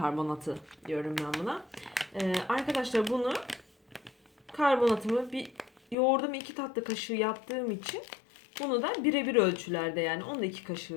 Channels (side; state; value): right; drops out; at 6.0 s